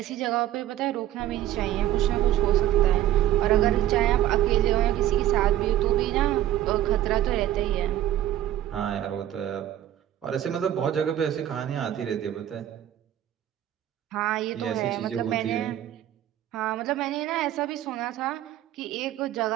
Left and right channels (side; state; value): left; quieter; 12.6 dB